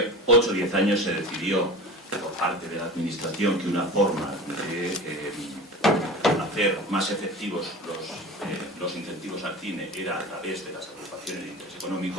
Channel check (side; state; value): both; normal; correlation 0.34